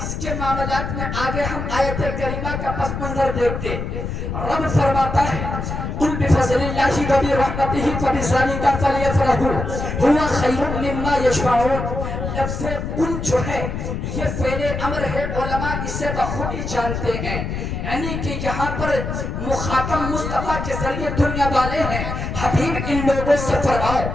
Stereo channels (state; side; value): noise; left; rumble, 4 dB below the sound